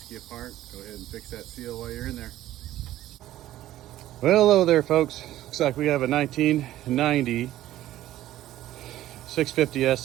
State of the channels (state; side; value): quieter; left; 14.1 dB